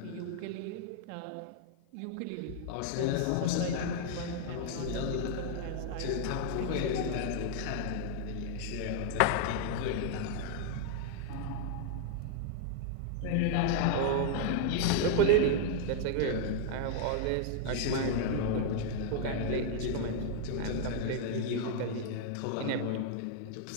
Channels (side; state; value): both; different; correlation 0.00